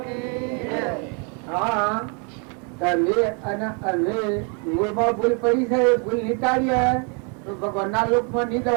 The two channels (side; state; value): left; quieter; 36.8 dB